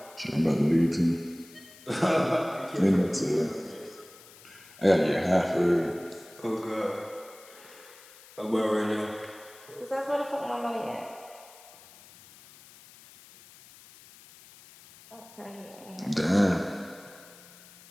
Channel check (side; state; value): left; noise; hiss, 22 dB below the sound